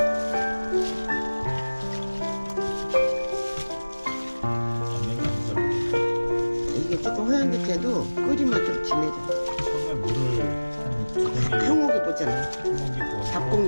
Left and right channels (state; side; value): inverted; both; correlation -1.00